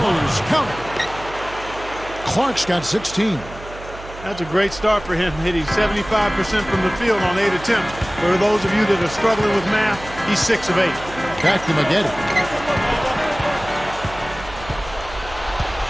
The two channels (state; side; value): noise; right; hum, 15 dB below the sound